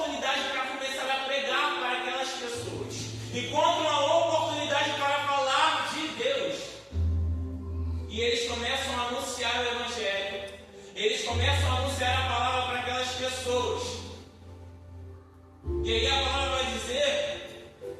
para começar a pregar para aquelas pessoas. Encontram a oportunidade para falar de Deus. E eles começam a anunciar o Evangelho. Eles começam a anunciar a palavra para aquelas pessoas. E aí a palavra vai dizer,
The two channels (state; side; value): identical; both; correlation 1.00